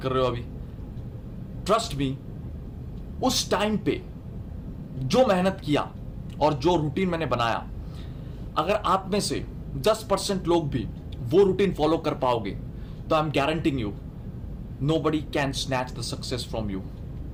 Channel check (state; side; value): identical; both; correlation 1.00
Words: कर रहे हो अभी। ट्रस्ट मी, उस टाइम पे जो मेहनत किया और जो रूटीन मैंने बनाया, अगर आप में से 10% लोग भी वो रूटीन फॉलो कर पाओगे तो I am guaranteeing you nobody can snatch the success from you.